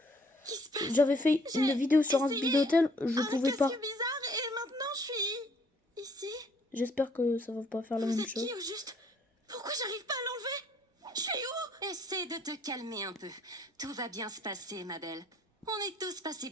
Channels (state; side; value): normal; both; correlation 0.63